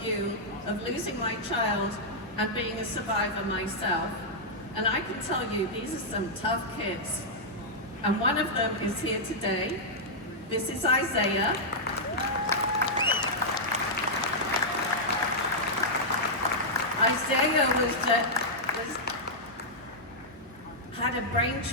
of losing my child and being a survivor myself. And I can tell you, these are some tough kids. And one of them is here today. This is Isaiah. Isaiah had a brain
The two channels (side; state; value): both; normal; correlation -0.07